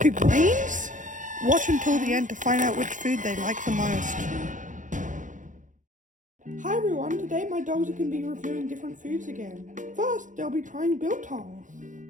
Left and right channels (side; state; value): left; late; 0.37 ms